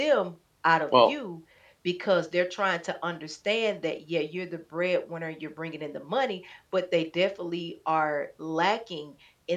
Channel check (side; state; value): both; identical; correlation 1.00